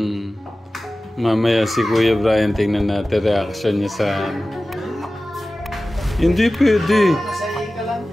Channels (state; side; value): normal; both; correlation 0.96